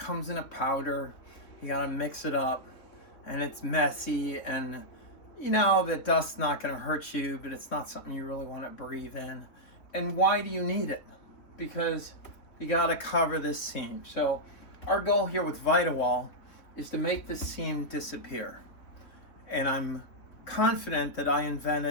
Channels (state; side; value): late; right; 3.5 ms